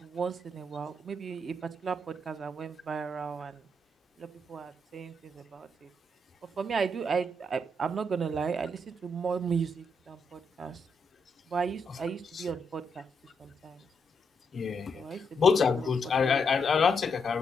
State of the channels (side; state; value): both; normal; correlation 0.79